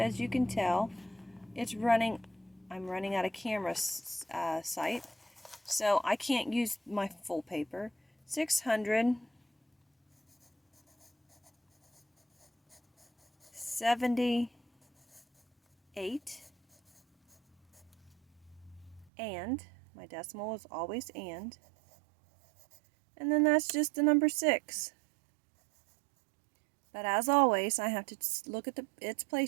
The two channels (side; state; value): left; drops out; at 19.1 s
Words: you can tell, I'm running out of camera site, so I can't use my full paper. 678, and my decimal is always and then that's just the number 6. But as always, I have to look at its